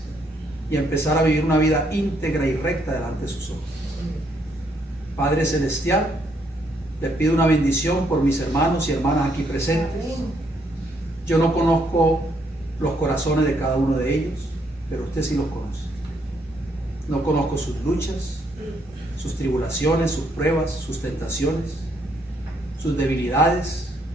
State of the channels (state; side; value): normal; both; correlation 0.72